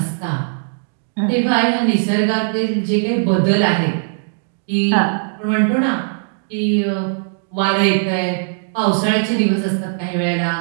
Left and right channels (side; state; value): left; silent; digital silence